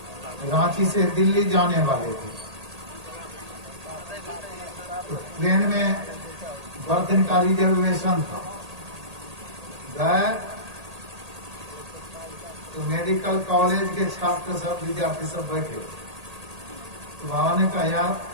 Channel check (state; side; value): late; left; 1.8 ms